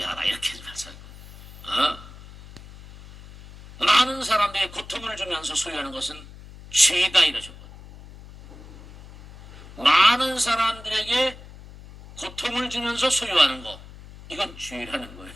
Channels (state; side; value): noise; left; hum, 18 dB below the sound